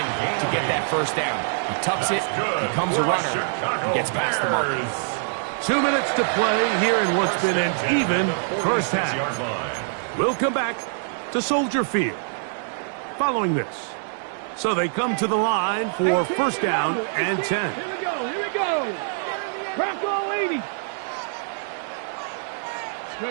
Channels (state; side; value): silent; left; 56 dB below the other